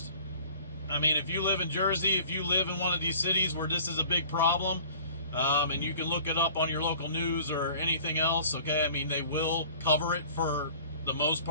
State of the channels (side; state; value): both; inverted; correlation -0.47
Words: I mean, if you live in Jersey, if you live in one of these cities where this is a big problem, and you can look it up on your local news or anything else, okay? I mean, they will cover it for the most